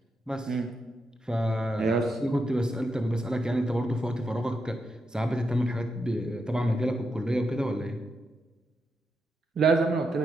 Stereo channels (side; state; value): both; normal; correlation 0.84